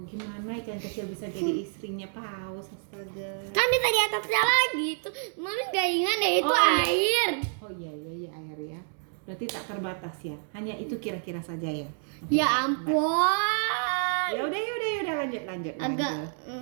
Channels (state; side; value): silent; left; 59 dB below the other